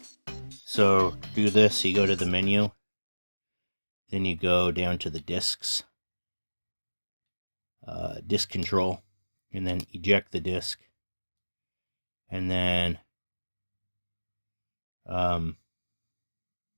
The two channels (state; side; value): inverted; both; correlation -1.00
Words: So do this, you go to the menu. Then you go down to the discs. Disk control. And then eject the disk. And then let's